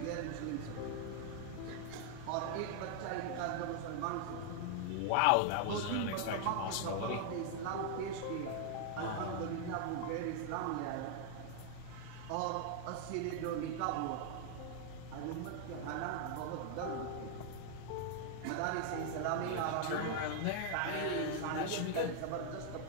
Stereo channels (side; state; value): both; different; correlation 0.00